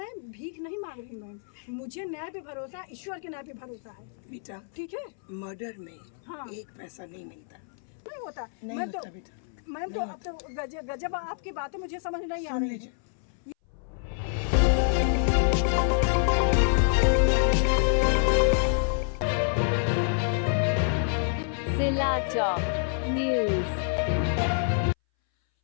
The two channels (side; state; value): right; silent; 60 dB below the other